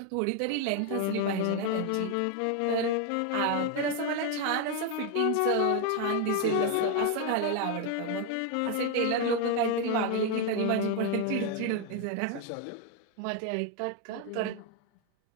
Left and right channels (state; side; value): different; both; correlation 0.01